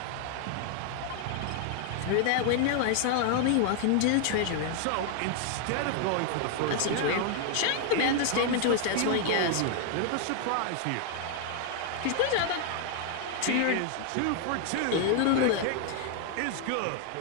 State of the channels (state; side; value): different; both; correlation 0.00